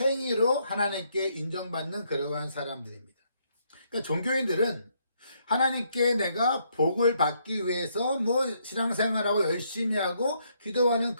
하나님께 인정받는 그러한 사람들입니다. 그러니까 종교인들은 하나님께 내가 복을 받기 위해서 신앙생활하고 열심히 하고 기도하는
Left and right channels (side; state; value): both; inverted; correlation -0.73